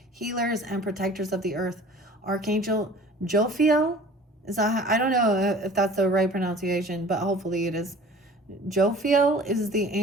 healers, and protectors of the earth. Archangel Jophiel, I don't know if that's the right pronunciation, but hopefully it is. Jophiel is the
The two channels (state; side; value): normal; both; correlation 0.46